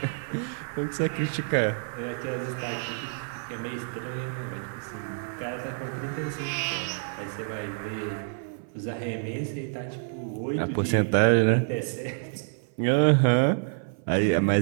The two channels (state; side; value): silent; left; 56 dB below the other